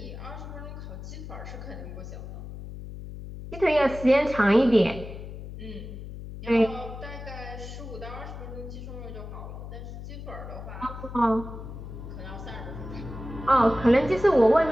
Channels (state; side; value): noise; left; hum, 10 dB below the sound